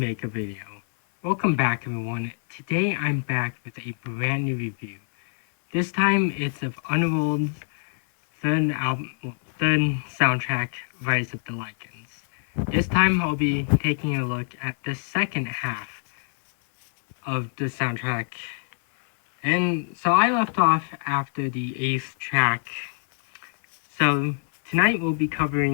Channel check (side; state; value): right; silent; 58 dB below the other